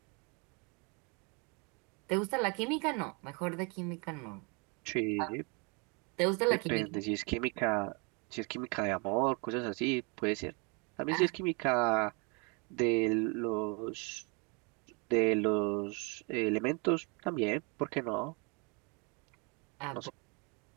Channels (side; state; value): left; quieter; 32.7 dB